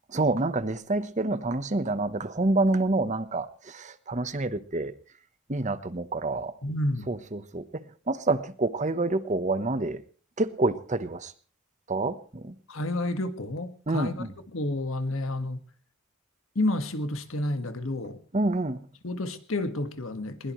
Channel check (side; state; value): both; normal; correlation 0.50